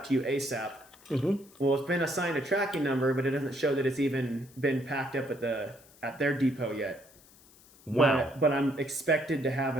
to you ASAP." Well, it's been assigned a tracking number, but it doesn't show that it's even been packed up at their depot yet. Wow. But I'm expected to have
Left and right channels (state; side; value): noise; left; hiss, 26 dB below the sound